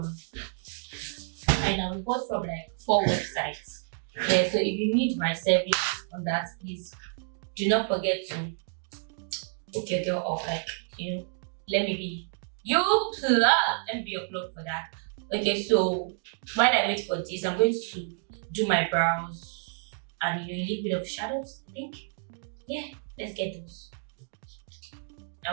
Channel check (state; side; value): silent; left; 58 dB below the other